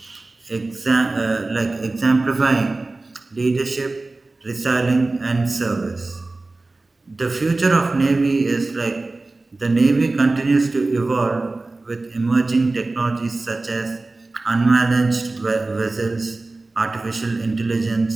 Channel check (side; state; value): left; quieter; 3.2 dB